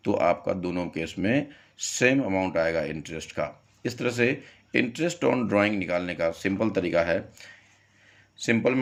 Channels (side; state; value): both; identical; correlation 1.00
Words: तो आपका दोनों केस में सेम अमाउंट आएगा इंटरेस्ट का। इस तरह से इंटरेस्ट ऑन ड्राइंग निकालने का सिंपल तरीका है, सिंपल